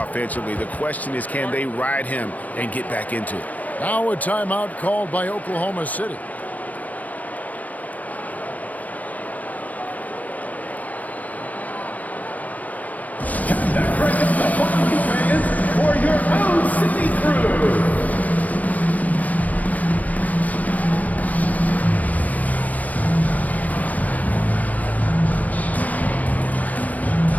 The question is, can they ride him and get back into it? Now a timeout called by Oklahoma City. Congratulations the following fans for your own city crew.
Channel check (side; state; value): right; late; 0.073 ms